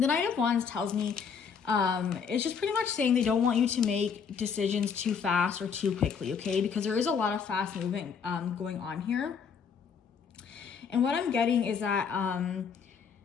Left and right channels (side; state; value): right; quieter; 6.4 dB